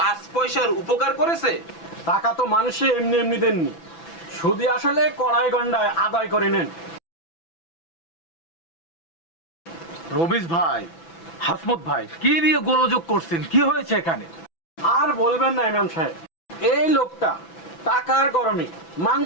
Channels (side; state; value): right; late; 6.0 ms